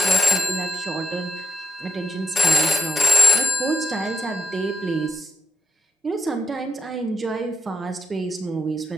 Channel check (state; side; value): normal; both; correlation 0.84